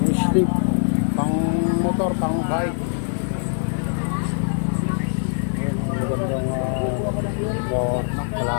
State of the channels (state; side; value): silent; right; digital silence